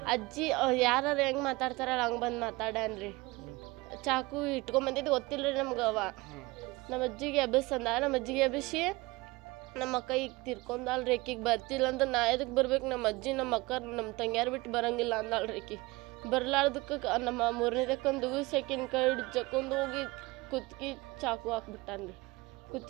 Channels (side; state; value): left; quieter; 22.6 dB